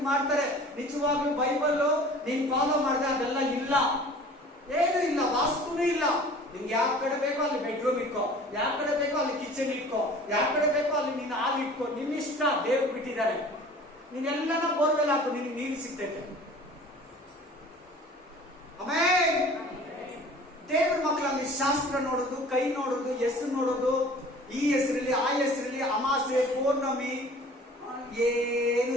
ಮಾಡ್ತಾರೆ. ನಿಜವಾಗ್ಲೂ ಬೈಬಲ್ ನೀನ್ ಫಾಲೋ ಮಾಡಿದ್ರೆ ಅದೆಲ್ಲ ಇಲ್ಲ, ಏನು ಇಲ್ಲ, ವಾಸ್ತುನೂ ಇಲ್ಲ. ನಿಮ್ಗೆ ಯಾವ ಕಡೆ ಬೇಕೋ ಅಲ್ಲಿ ಬೆಡ್ರೂಮ್ ಇಟ್ಕೋ, ಯಾವ ಕಡೆ ಬೇಕೋ ಅಲ್ಲಿ ಕಿಚನ್ ಇಟ್ಕೋ, ಯಾವ ಕಡೆ ಬೇಕೋ ಅಲ್ಲಿ ನೀನ್ ಹಾಲ್ ಇಟ್ಕೋ, ನಿನ್ನ ಇಷ್ಟ. ದೇವ್ರು ಬಿಟ್ಟಿದ್ದಾರೆ. ನೀನೆಲ್ಲನ ಬೋರ್ವೆಲ್ ಹಾಕು, ನಿನಗೆ ನೀರು ಸಿಗ್ತೈತೆ. ಆಮೇಲೆ ದೇವ್ರ ಮಕ್ಕಳ ಅಲ್ಲಿ ಶಾಸ್ತ್ರ ನೋಡೋದು, ಕೈ ನೋಡೋದು, ಹೆಸರು ನೋಡೋದು, ಈ ಹೆಸರಲ್ಲಿ ಆ ಹೆಸರಲ್ಲಿ ಅಮಾಸೆ ಪೌರ್ಣಮಿ ಏನೂ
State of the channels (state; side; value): normal; both; correlation 0.46